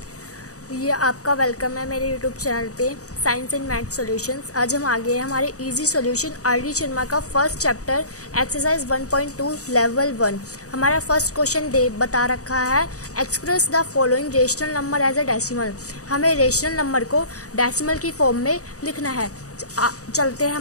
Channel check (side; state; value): right; late; 0.66 ms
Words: ये आपका वेलकम है मेरे यूट्यूब चैनल पे साइंस एंड मैथ सॉल्यूशंस। आज हम आ गए हैं हमारे इजी सॉल्यूशन आर.डी. शर्मा का फर्स्ट चैप्टर एक्सरसाइज 1.2 लेवल 1। हमारा फर्स्ट क्वेश्चन बता रखा है express the following rational number as a decimal. हमें रेशनल नंबर को डेसिमल की फॉर्म में लिखना है। चलते हैं